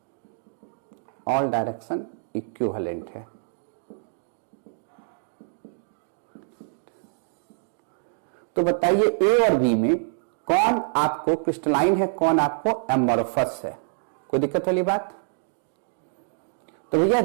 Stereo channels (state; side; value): silent; left; digital silence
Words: ऑल डायरेक्शन इक्विवेलेंट है। तो बताइए ए और बी में कौन आपको क्रिस्टलाइन है, कौन आपको एमॉर्फस है, कोई दिक्कत वाली बात। तो भैया